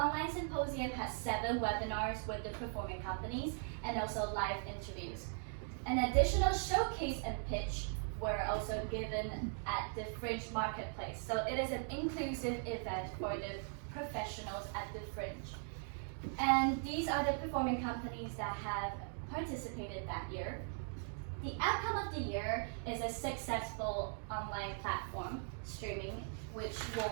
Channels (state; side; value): silent; left; 51 dB below the other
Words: Symposium has 7 webinars with the performing companies and also live interviews. An additional showcase and pitch were also given at the Fringe Marketplace. So it is an inclusive event for the professionals at the Fringe. And these are the performing companies that have participated that year. The outcome of the year is a successful online platform streaming, which